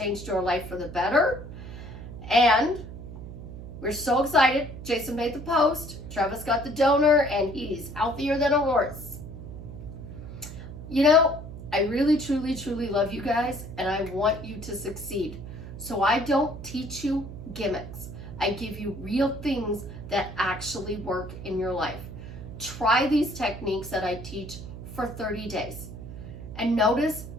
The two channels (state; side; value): noise; right; hum, 11 dB below the sound